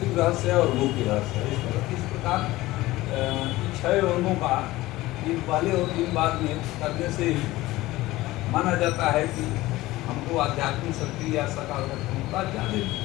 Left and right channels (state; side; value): quieter; right; 18.0 dB